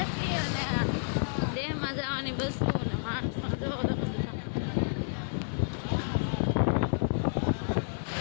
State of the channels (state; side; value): silent; right; digital silence